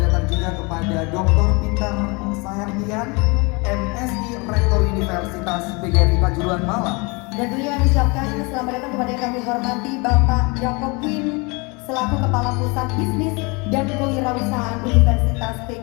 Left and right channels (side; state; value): right; quieter; 28.6 dB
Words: datang juga kepada Dr. Peter Saherdian, MSI Rektor Universitas PGRI Kanjuruhan Malang. Dan tentunya kami ucapkan selamat datang kepada yang kami hormati Bapak Jacob Quinn selaku Kepala Pusat Bisnis dan Kewirausahaan Universitas